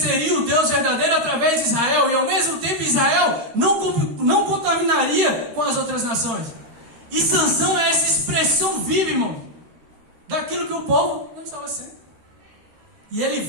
o Deus verdadeiro através de Israel, e ao mesmo tempo Israel não contaminaria com as outras nações. E Sansão é essa expressão viva, irmão, daquilo que o povo não estava sendo. E ele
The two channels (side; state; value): left; late; 13 ms